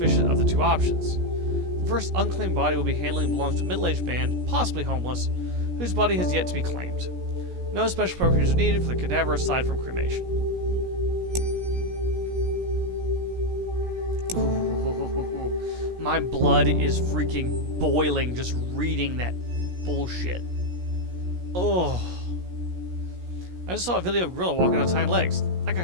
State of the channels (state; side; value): late; left; 17 ms